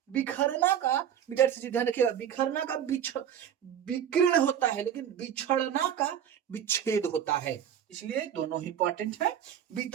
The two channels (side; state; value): left; quieter; 9.5 dB